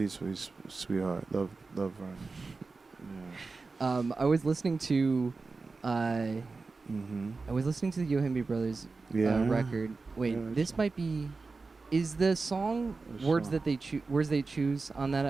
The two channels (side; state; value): left; quieter; 4.0 dB